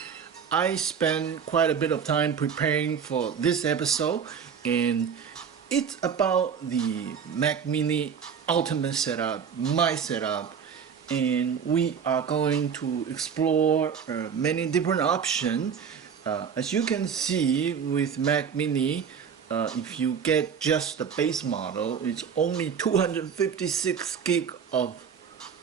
I spent quite a bit of time preparing for this episode, and it's about the Mac Mini Ultimate setup, my setup, and we are going to explore many different options. As you can see with Mac Mini, if you get just the base model, it's only 256 gig of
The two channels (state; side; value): quieter; left; 7.0 dB